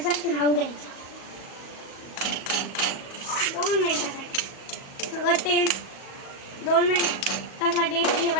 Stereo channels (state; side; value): late; right; 37 ms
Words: राहू द्यायचं. 2 मिनिटासाठी सगळं तेल 2 मिनिटासाठी